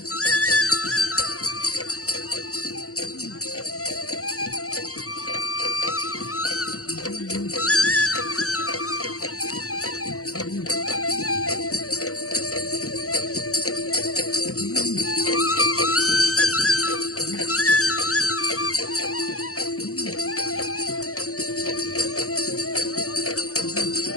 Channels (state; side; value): late; right; 0.65 ms